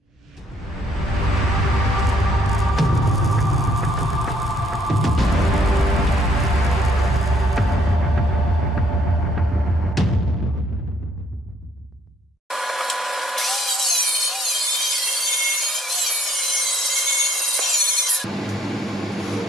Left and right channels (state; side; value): normal; both; correlation 0.66